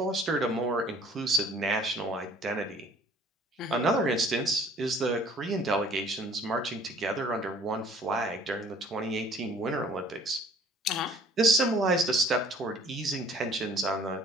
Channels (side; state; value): both; normal; correlation 0.54